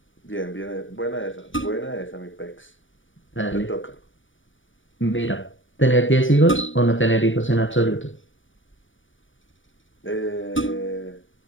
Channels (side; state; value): right; late; 0.56 ms